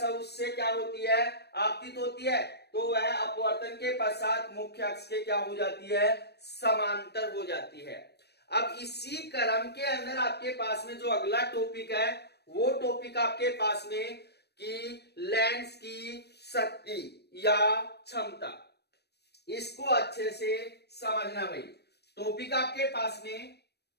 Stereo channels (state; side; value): late; right; 0.48 ms